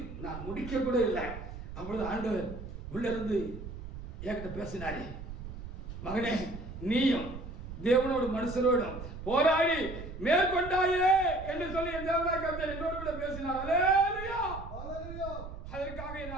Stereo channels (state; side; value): noise; right; rumble, 10 dB below the sound